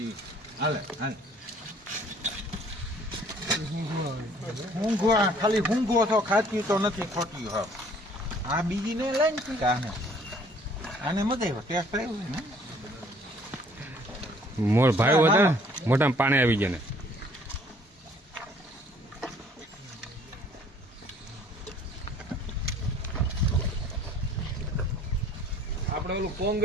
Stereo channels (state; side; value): normal; both; correlation 0.57